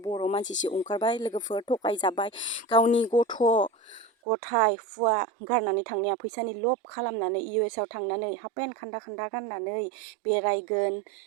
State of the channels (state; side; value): drops out; left; at 4.1 s